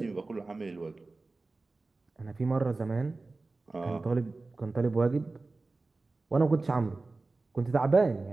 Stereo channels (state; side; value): quieter; left; 3.5 dB